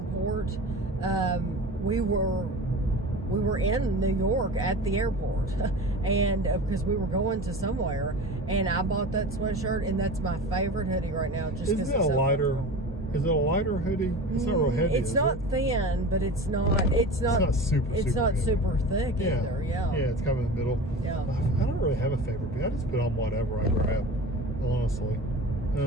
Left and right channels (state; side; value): normal; both; correlation 0.33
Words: We were in New York at the airport, and because we were going to somewhere, and I bought that sweatshirt, and that's my favorite hoodie right now. Just because it's so comfortable. Is it a lighter hoodie? It's not real heavy. It's not thin, but it's not super thick either. Yeah, it's kind of in the middle. Yeah. I don't really have a favorite, but I just put on whatever I grab, honestly.